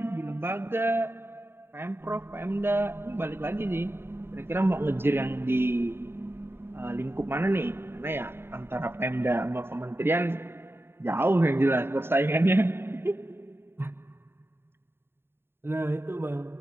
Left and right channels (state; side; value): late; left; 0.11 ms